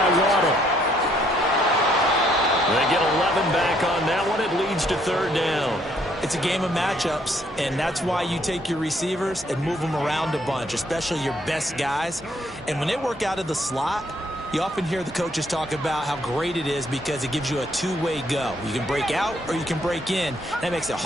Waddle. They get 11 back on that one. It leads to third down. It's a game of matchups, and that's why you take your receivers and move them around a bunch, especially your best guys. And when they work out of the slot, you often hear the coaches talk about how great it is because it gives you a two-way go. You can break out or you can break in. That makes it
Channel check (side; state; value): both; normal; correlation 0.68